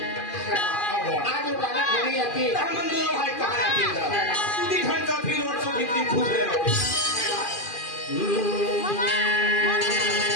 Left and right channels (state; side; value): late; right; 2.4 ms